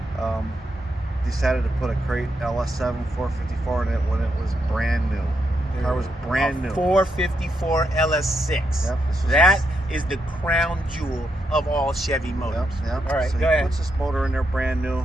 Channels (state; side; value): normal; both; correlation 0.81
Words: decided to put a crate LS7 454 in it when it was brand new. The car was brand new. 454 LS6. Yep, that is the crown jewel of all Chevy motors. Yep. All right, so go he ahead. puts this motor in there brand